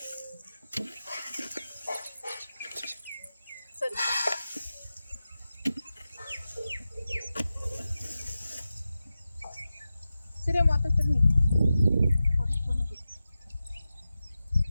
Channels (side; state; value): both; inverted; correlation -0.93